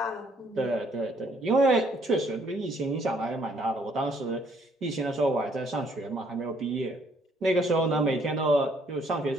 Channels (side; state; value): both; normal; correlation 0.66